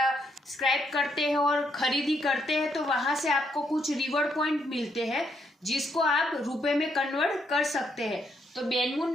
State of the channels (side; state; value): both; normal; correlation 0.75